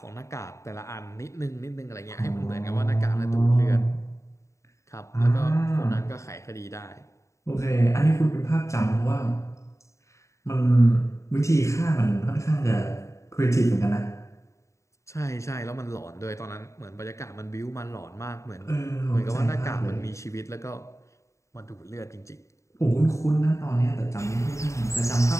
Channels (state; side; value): late; right; 0.14 ms